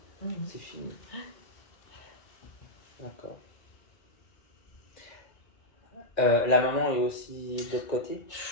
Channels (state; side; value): late; right; 2.0 ms